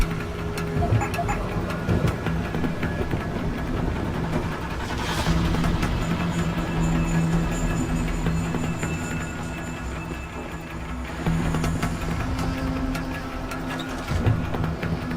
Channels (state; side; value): identical; both; correlation 1.00